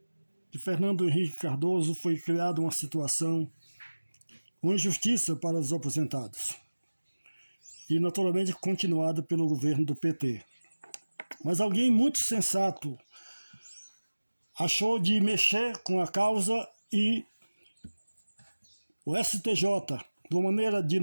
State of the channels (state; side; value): inverted; both; correlation -1.00